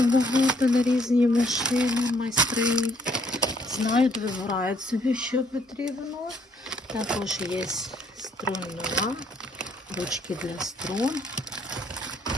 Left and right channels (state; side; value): normal; both; correlation 0.68